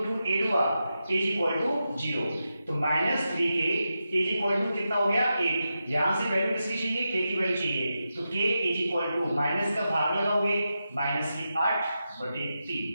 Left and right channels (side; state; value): both; inverted; correlation -0.89